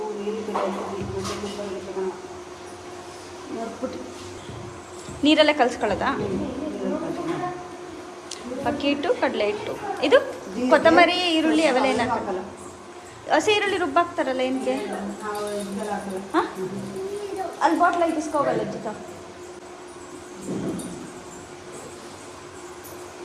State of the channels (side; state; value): both; identical; correlation 1.00